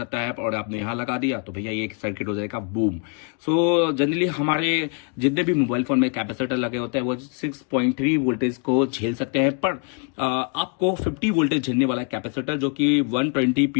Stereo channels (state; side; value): quieter; right; 37.2 dB